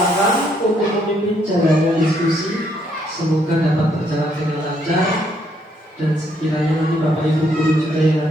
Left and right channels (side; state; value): both; normal; correlation 0.71